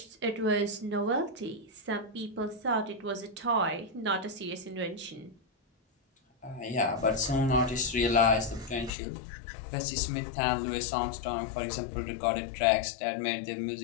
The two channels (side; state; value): right; drops out; at 8.9 s